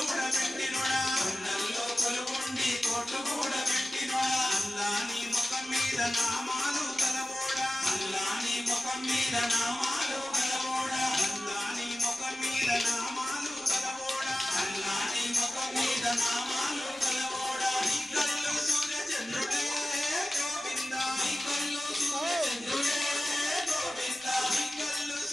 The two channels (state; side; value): noise; right; rumble, 28 dB below the sound